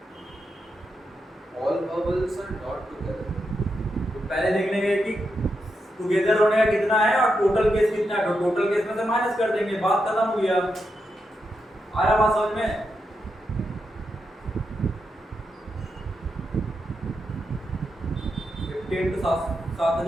All vowels are not together. तो पहले देख लेंगे कि टुगेदर होने का कितना है और टोटल केस कितना है, तो टोटल केस में से माइनस कर देंगे, बात खत्म हो गया। आया बात समझ में, 50 into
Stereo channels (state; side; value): normal; both; correlation 0.85